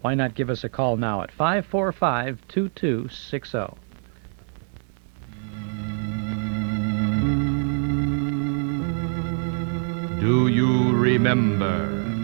why not give us a call now at 545-2260. Do you remember?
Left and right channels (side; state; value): left; silent; 62 dB below the other